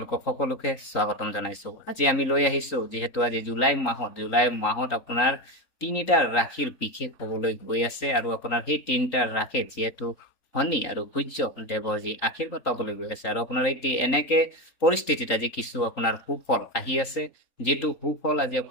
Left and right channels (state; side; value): late; right; 3.8 ms